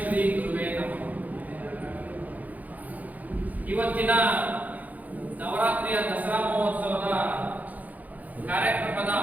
ಶ್ರೀ ಗುರುವೇ ನಮಃ. ಇವತ್ತಿನ ನವರಾತ್ರಿಯ ದಸರಾ ಮಹೋತ್ಸವದ ಕಾರ್ಯಕ್ರಮದ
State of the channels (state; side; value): late; left; 0.079 ms